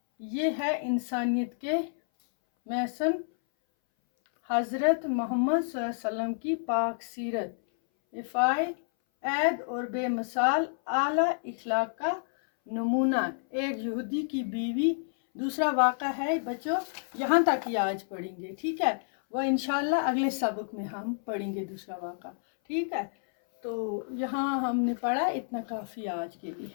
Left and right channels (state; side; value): silent; right; 58 dB below the other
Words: یہ ہے انسانیت کے محسن حضرت محمد صلی اللہ علیہ وسلم کی پاک سیرت، افائے عید اور بے مثال اعلیٰ اخلاق کا نمونہ۔ ایک یہودی کی بیوی۔ دوسرا واقعہ ہے بچوں، یہاں تک ہی آج پڑھیں گے، ٹھیک ہے؟ وہ انشاءاللہ اگلے سبق میں ہم پڑھیں گے دوسرا واقعہ، ٹھیک ہے؟ تو یہاں ہم نے پڑھا، اتنا کافی آج کے لیے۔